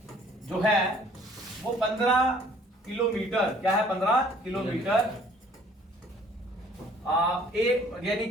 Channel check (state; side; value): normal; both; correlation 0.57